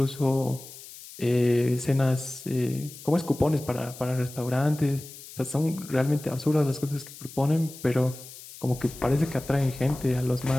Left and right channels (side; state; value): left; noise; hiss, 16 dB below the sound